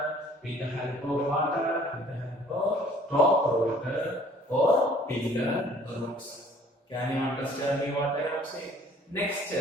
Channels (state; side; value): normal; both; correlation 0.55